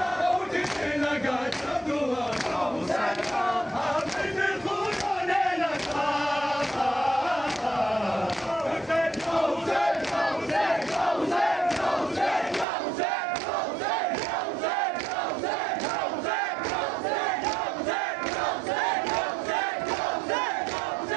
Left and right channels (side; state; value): left; drops out; at 12.7 s